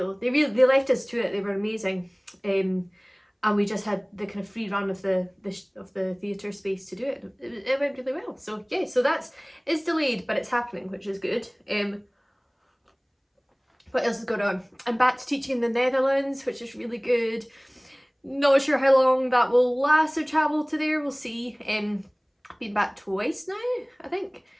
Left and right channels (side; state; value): both; identical; correlation 1.00